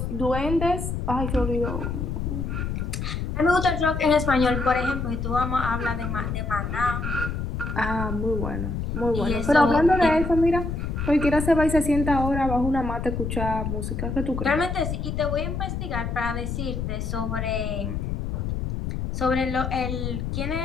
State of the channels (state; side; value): noise; left; rumble, 3 dB below the sound